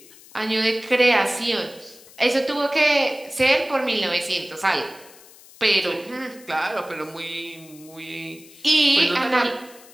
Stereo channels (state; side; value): noise; left; hiss, 22 dB below the sound